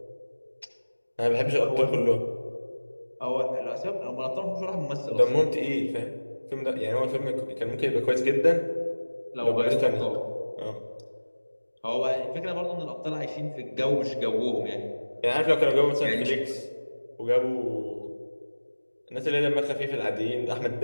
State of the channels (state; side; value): inverted; both; correlation -1.00